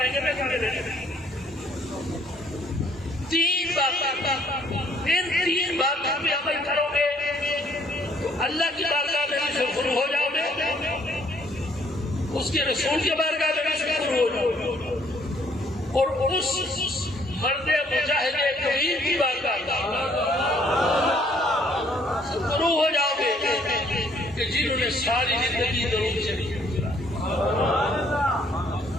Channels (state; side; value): normal; both; correlation 0.63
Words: گے، میں کرنے دینا. 3 باتیں، ان 3 باتوں پہ عمل کرو گے تو اللہ کی بارگاہ میں بھی شکر ہو جاؤ گے، اس کے رسول کے بارگاہ میں بھی شکر ہو جاؤ گے، اور اس مرد مجاہد کبیر کی بارگاہ شکر ہو جاؤ گے کہ جنہوں نے ساری زندگی درود شریف گزارا.